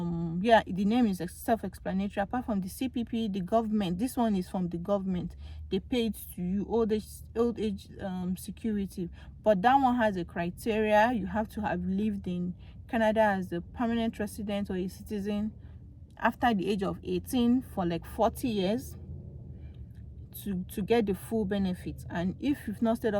the name is self-explanatory. Apart from the CPP, the government, this one is from the government, they pay it to you, old age security. But that one has a criteria. You have to have lived in Canada as a permanent resident or a citizen after the age of 18 for like 40 years to get the full benefits. And if you've not stayed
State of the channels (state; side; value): identical; both; correlation 1.00